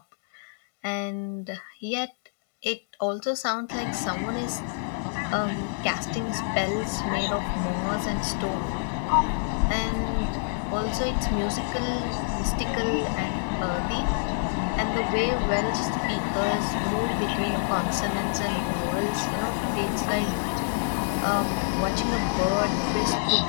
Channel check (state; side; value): silent; right; digital silence